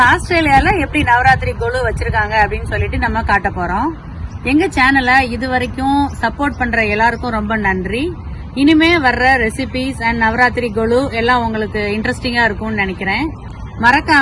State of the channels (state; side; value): identical; both; correlation 1.00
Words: ஆஸ்திரேலியால எப்படி நவராத்திரி கோலு வச்சிருக்காங்க அப்படின்னு சொல்லிட்டு நம்ம காட்ட போறோம். எங்க சேனலை இது வரைக்கும் சப்போர்ட் பண்ற எல்லாருக்கும் ரொம்ப நன்றி. இனிமே வர்ற ரெசிபிஸ் அண்ட் நவராத்திரி கோலு எல்லாம் உங்களுக்கு இன்ட்ரெஸ்டிங்கா இருக்கும்னு நினைக்கிறேன்.